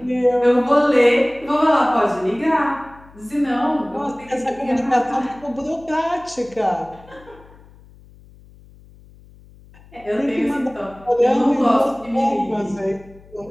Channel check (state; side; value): noise; left; hum, 24 dB below the sound